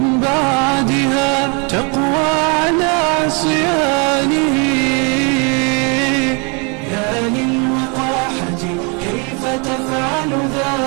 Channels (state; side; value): quieter; left; 33.6 dB